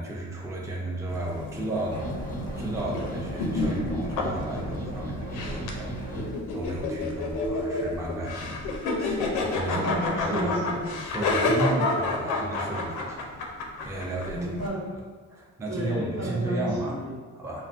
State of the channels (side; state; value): both; normal; correlation 0.36